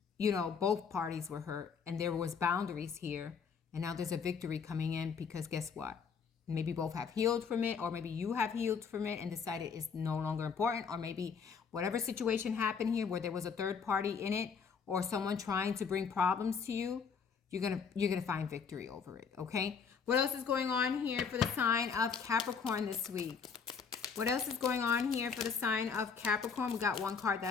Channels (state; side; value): quieter; right; 6.1 dB